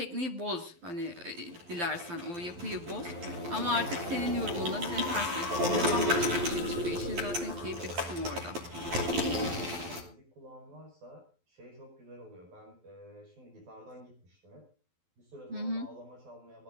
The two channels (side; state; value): left; late; 12 ms